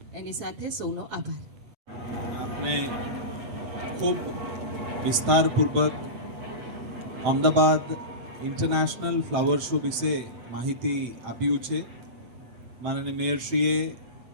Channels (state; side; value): late; left; 7.9 ms